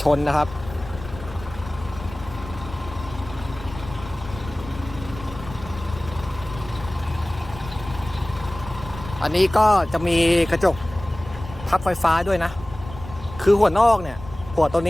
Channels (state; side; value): noise; left; rumble, 14 dB below the sound